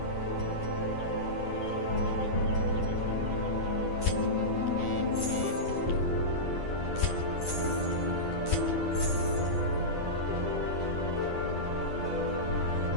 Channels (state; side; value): late; right; 10 ms